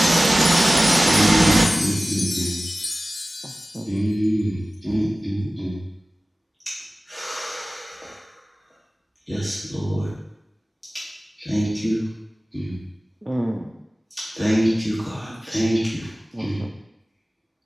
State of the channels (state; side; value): normal; both; correlation 0.97